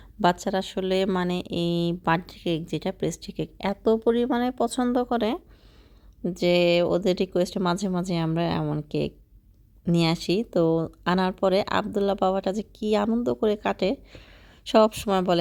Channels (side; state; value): both; identical; correlation 1.00